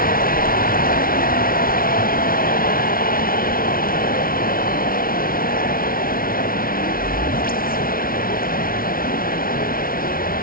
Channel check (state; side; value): late; right; 0.42 ms